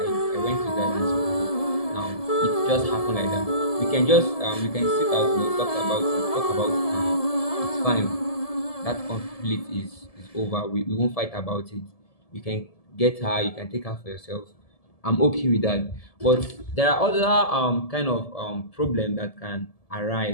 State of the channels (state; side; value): late; right; 1.7 ms